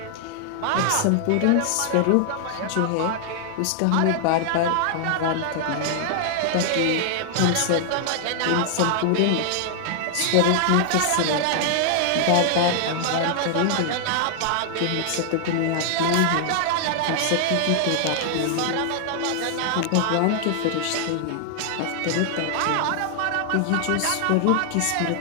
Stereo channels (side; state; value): both; different; correlation 0.00